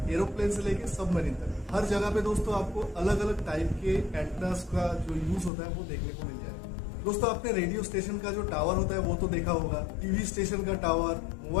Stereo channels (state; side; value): drops out; right; at 5.5 s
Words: एरोप्लेन से लेके सबमरीन तक, हर जगह पे दोस्तों आपको अलग अलग टाइप के एंटेनास का जो यूज होता है वो देखने को मिल जाएगा। दोस्तों आपने रेडियो स्टेशन का जो टावर होता है वो तो देखा होगा, टीवी स्टेशन का टावर,